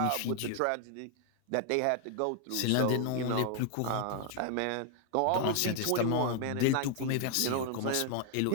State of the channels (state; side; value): different; both; correlation 0.00